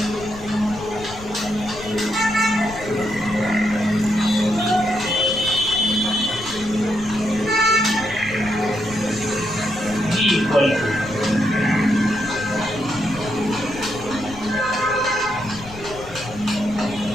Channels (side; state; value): left; noise; rumble, 15 dB below the sound